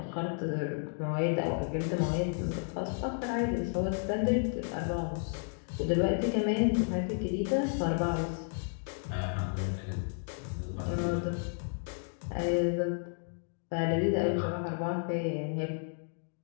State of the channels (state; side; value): silent; right; 56 dB below the other